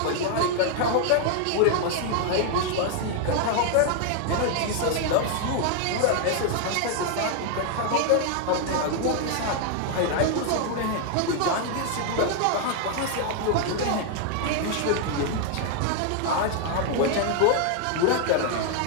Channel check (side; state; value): both; different; correlation 0.00